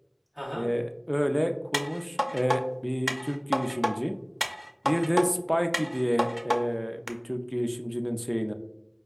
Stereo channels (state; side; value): identical; both; correlation 1.00